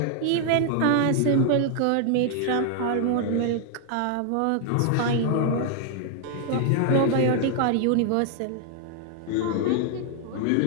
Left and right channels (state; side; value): different; both; correlation 0.00